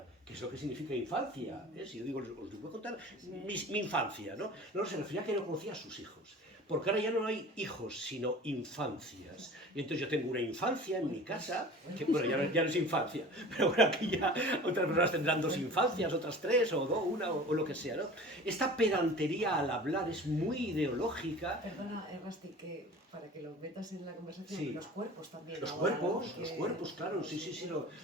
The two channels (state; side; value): normal; both; correlation 0.40